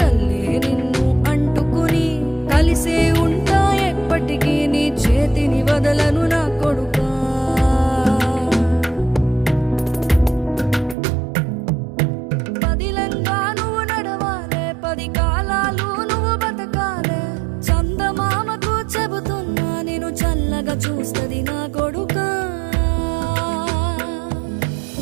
నిన్ను అంటుకుని కలిసే ఉంటా ఎప్పటికీ నీ చేతిని వదలను నా కొడుకా. పదిలంగా నువ్వు నడవాలే, 10 కాలాలు నువ్వు బతకాలే. చందమామకు చెబుతున్నా నేను చల్లగా చూస్తది నా కొడుకా.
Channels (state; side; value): drops out; left; at 11.0 s